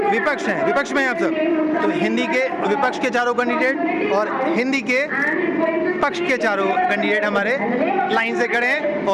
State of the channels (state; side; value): identical; both; correlation 1.00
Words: विपक्ष हैं, विपक्ष में हैं आप सब। तो हिंदी के विपक्ष के चारों कैंडिडेट और हिंदी के पक्ष के चारों कैंडिडेट हमारे लाइन से खड़े हैं